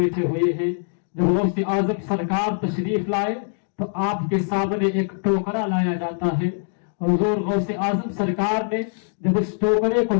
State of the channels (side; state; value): right; silent; digital silence